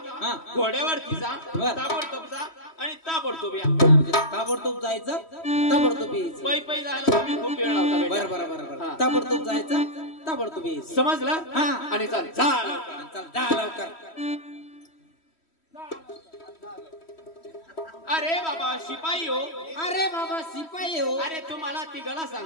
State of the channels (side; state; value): right; late; 3.1 ms